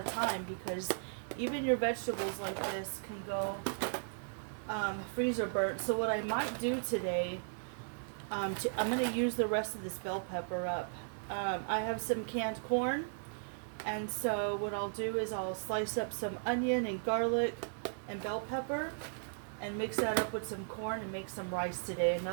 time, because even your vegetables like this can go freezer burnt. So what I might do today, I'm going to use the rest of this bell pepper up. I have some canned corn. And so what I'll do is I'll slice up some onion and garlic and bell pepper and mix that up with some corn and make some rice today.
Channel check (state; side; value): silent; left; digital silence